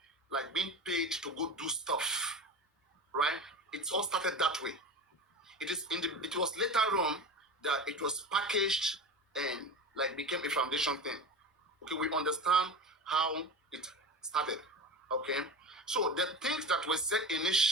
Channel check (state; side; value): normal; both; correlation 0.28